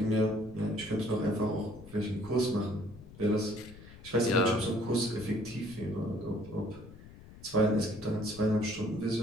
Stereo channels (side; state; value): left; noise; rumble, 18 dB below the sound